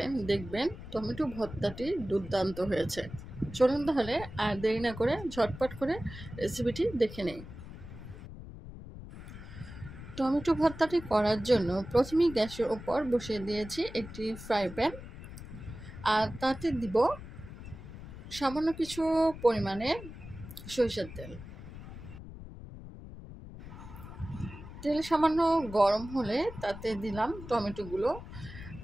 দেখবেন টমেটো ভর্তাটি দুর্দান্ত হয়েছে। চলুন তাহলে আর দেরি না করে ঝটপট করে রেসিপিটি দেখে নেই। টমেটো ভর্তাটি করার জন্য প্রথমেই গ্যাসের ওপর বসিয়ে দিয়েছি একটি ফ্রাই প্যান। আর তাতে দিব সামান্য কিছু পরিমাণে সরিষার তেল। তেল সামান্য গরম হলে তাতে দিলাম টমেটোগুলো।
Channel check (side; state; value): left; noise; rumble, 13 dB below the sound